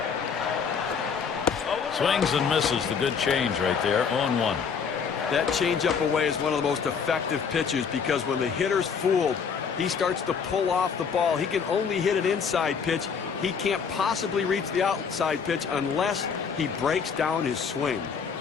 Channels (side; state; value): right; quieter; 6.3 dB